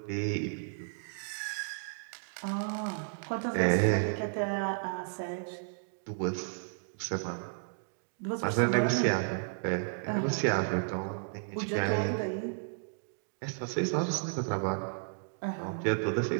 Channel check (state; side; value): silent; left; digital silence